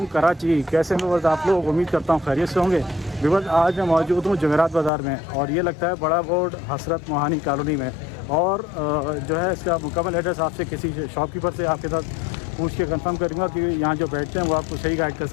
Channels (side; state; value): right; drops out; at 4.9 s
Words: कराची, कैसे हैं बस आप लोग? उम्मीद करता हूँ खैरियत से होंगे। बिबस आज मैं मौजूद हूँ जमेरात बाज़ार में, और ये लगता है बड़ा बोर्ड हसरत मोहानी कॉलोनी में। और जो है इसका मुकम्मल एड्रेस आपसे किसी शॉपकीपर से आपके साथ पूछ के कंफर्म करूँगा कि यहाँ जो बैठते हैं वो आपको सही गाइड कर